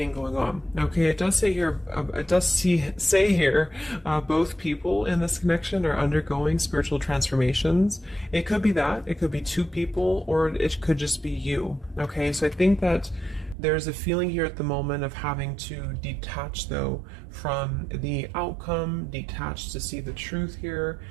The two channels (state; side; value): drops out; left; at 13.6 s